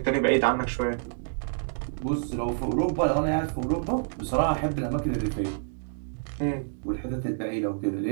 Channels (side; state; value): left; silent; digital silence